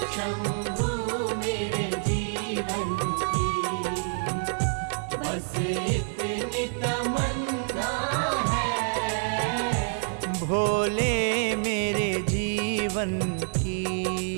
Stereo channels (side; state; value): left; silent; digital silence